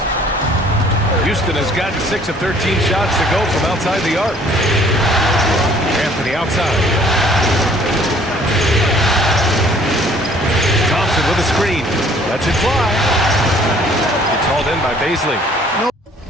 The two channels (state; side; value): normal; both; correlation 0.57